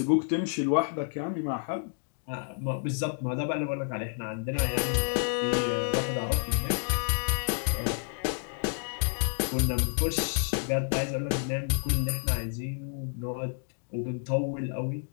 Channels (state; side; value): silent; right; digital silence